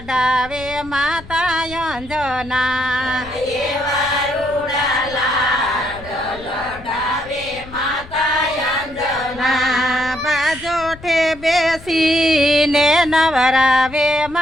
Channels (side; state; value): left; noise; rumble, 18 dB below the sound